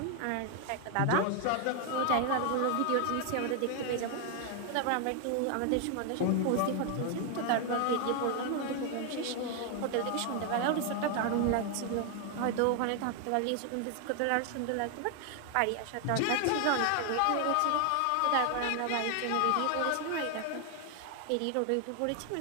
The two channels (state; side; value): different; both; correlation 0.00